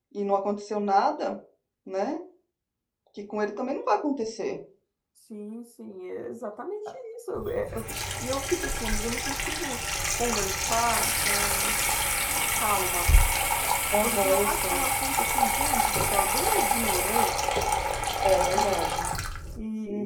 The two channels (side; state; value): both; identical; correlation 1.00